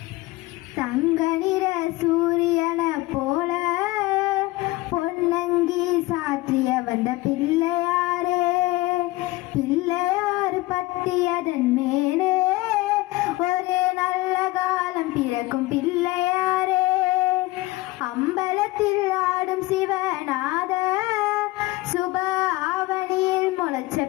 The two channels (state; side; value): quieter; right; 19.7 dB